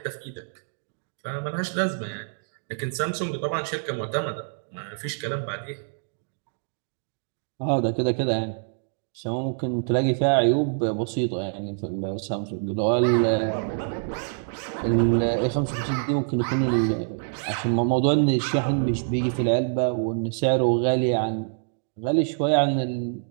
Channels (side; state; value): left; silent; 61 dB below the other